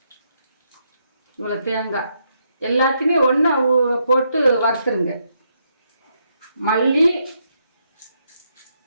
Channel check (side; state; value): both; inverted; correlation -0.77